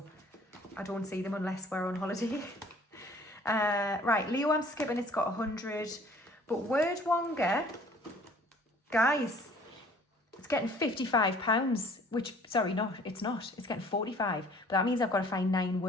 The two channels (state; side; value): normal; both; correlation 0.54